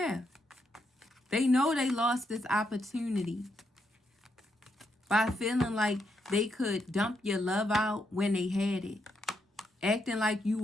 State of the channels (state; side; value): normal; both; correlation 0.80